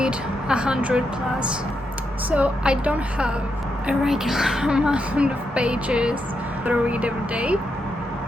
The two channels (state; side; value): normal; both; correlation 0.83